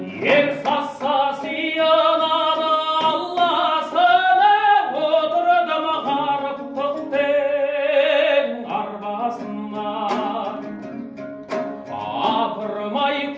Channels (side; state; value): both; identical; correlation 1.00